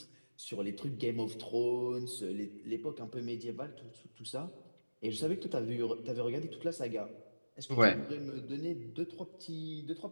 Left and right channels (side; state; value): both; inverted; correlation -1.00